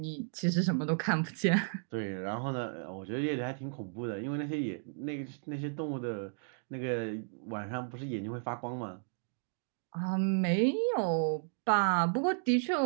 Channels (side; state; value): left; silent; digital silence